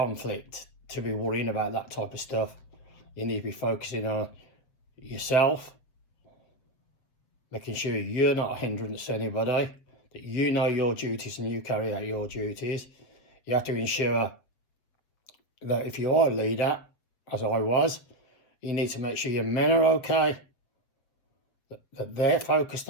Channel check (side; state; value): right; late; 7.6 ms